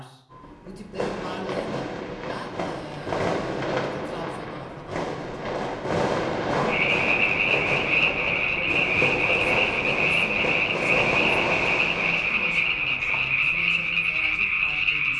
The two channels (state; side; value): identical; both; correlation 1.00